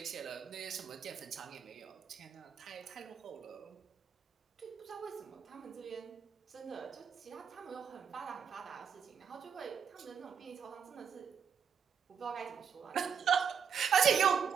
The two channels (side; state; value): left; quieter; 7.0 dB